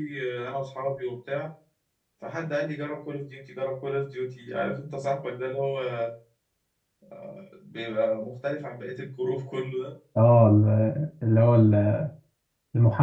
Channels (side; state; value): both; identical; correlation 1.00